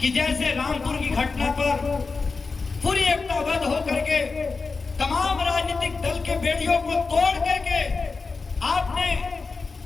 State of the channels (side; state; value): right; quieter; 4.3 dB